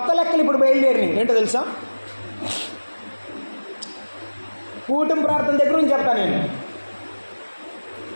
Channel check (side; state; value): both; inverted; correlation -1.00